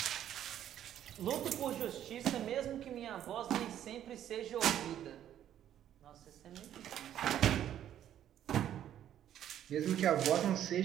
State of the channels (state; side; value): quieter; left; 10.9 dB